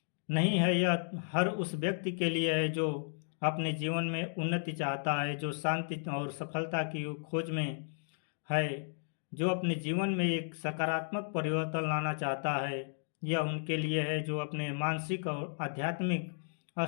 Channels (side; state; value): right; silent; digital silence